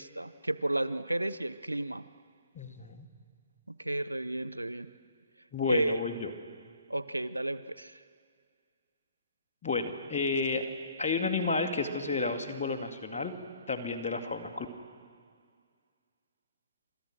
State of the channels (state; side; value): inverted; both; correlation -0.62